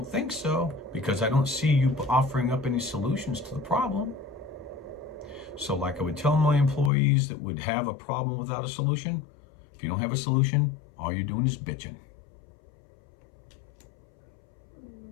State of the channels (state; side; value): drops out; right; at 6.9 s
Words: think so, because I don't see you offering up any solutions to the problem. So like I would tell my employees that would have a problem without a solution, if you don't have a solution, all you're doing is bitching.